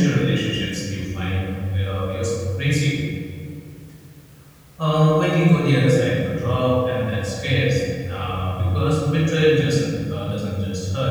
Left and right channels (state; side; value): identical; both; correlation 1.00